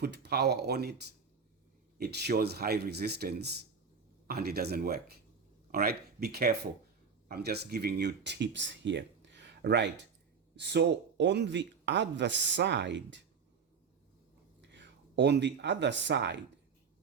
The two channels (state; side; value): quieter; left; 5.9 dB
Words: power on it, it shows high resistance and it doesn't work. All right, be careful. I'm just giving you tips here. Right. So on the other side,